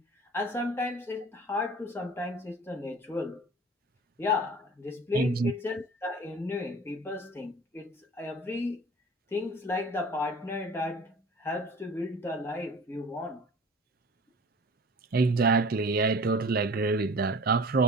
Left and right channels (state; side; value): normal; both; correlation 0.43